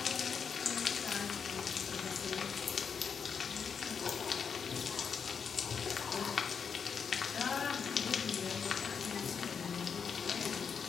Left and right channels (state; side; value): quieter; right; 6.4 dB